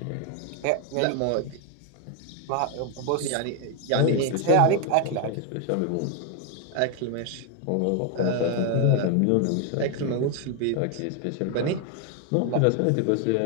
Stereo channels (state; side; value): different; both; correlation 0.00